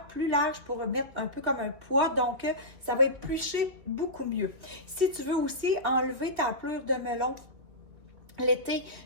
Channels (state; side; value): late; left; 2.3 ms